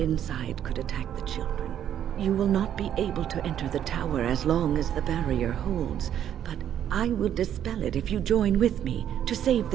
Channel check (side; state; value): left; quieter; 10.1 dB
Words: could attack the children. You will not be able to enter the tower as long as the barrier holds, but I will dispel it if you join with me to save